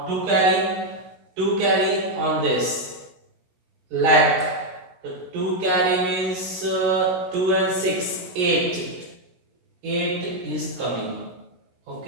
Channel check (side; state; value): left; late; 16 ms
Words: 2 carry on this leg. The 2 carry means 2 and 6, 8. 8 is coming.